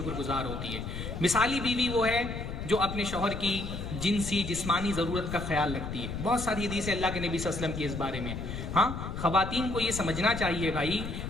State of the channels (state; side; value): noise; left; rumble, 6 dB below the sound